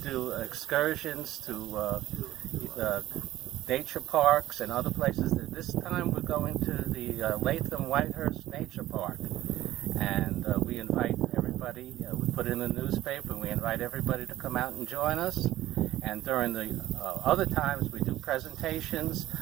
do excursions to nature parks and other places. This time we're going to the Latham-Whitehurst Nature Park, and we invite everybody. We put it in the newspaper, and we invite everybody to come out and join us. And during the other times, we do presentations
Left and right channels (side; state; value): left; quieter; 14.5 dB